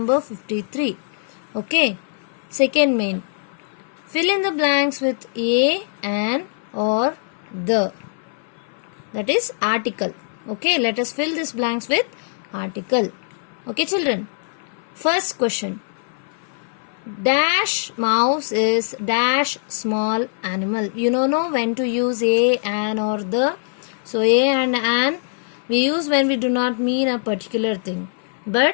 53. Okay, second main. Fill in the blanks with a, an or the, that is article. Okay, let us fill these blanks with article. Okay children, first question. Dash mouse is dash small animal. You know when to use a, an or the. So a and an we use when we do not mean a particular thing,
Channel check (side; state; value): right; silent; 58 dB below the other